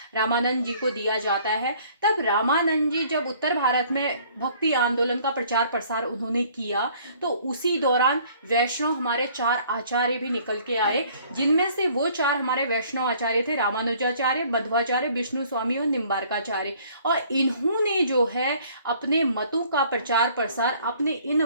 रामानंद जी को दिया जाता है। तब रामानंद जी जब उत्तर भारत में भक्ति आंदोलन का प्रचार प्रसार उन्होंने किया तो उसी दौरान वैष्णव हमारे 4 आचार्य भी निकल के आए, जिनमें से वो 4 हमारे वैष्णव आचार्य थे रामानुजाचार्य, मध्वाचार्य, विष्णु स्वामी और निम्बार्काचार्य। और इन्होंने जो है अपने मतों का प्रचार प्रसार अपने इन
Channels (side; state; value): both; inverted; correlation -0.57